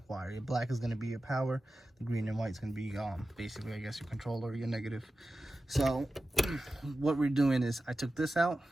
wire. Your black is going to be your power. The green and white is going to be basically, I guess, your controller, your negative. So what we're doing is I took this out.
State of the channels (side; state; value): both; normal; correlation 0.94